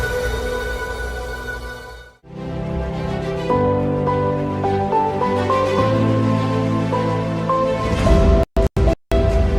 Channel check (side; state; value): both; identical; correlation 1.00